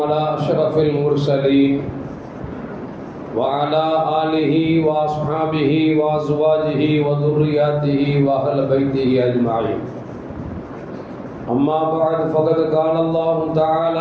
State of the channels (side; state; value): both; identical; correlation 1.00